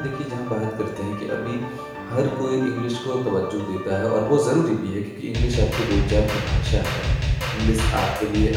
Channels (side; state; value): both; identical; correlation 1.00